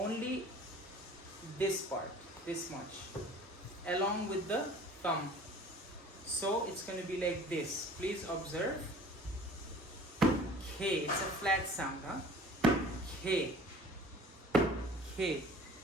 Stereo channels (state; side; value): normal; both; correlation 0.47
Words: this part, this much, along with the thumb. So it's going to be like this. Please observe. K, it's a flat sound, huh? K, K.